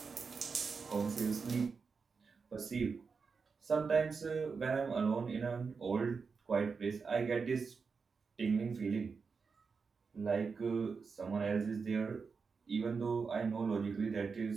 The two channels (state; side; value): quieter; left; 5.1 dB